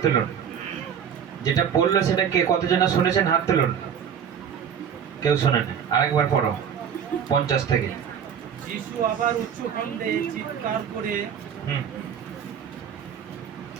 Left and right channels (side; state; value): left; quieter; 8.1 dB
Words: তুলুন। যেটা পড়লো সেটা কে কতজন শুনেছেন হাত তুলুন। কেউ শোনেন? আরেকবার পড়ো 50 থেকে। যিশু আবার উচ্চকণ্ঠে চিৎকার করে